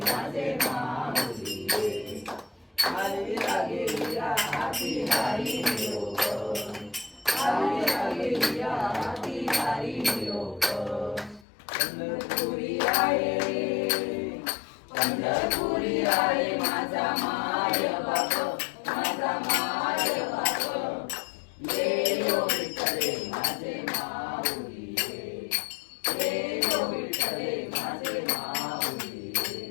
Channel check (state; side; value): drops out; right; at 11.5 s